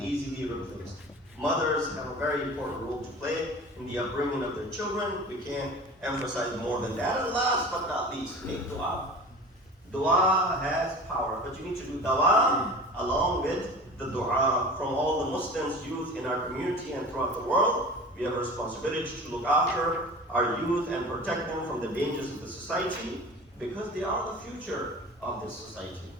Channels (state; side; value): normal; both; correlation 0.38